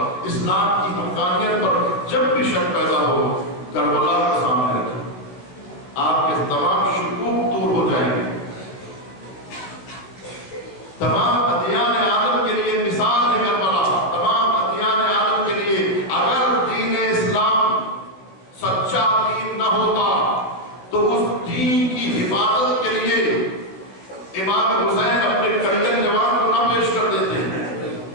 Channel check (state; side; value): late; right; 16 ms